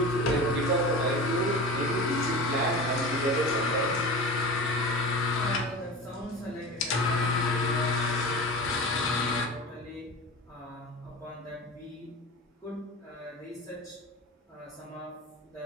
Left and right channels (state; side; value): normal; both; correlation 0.31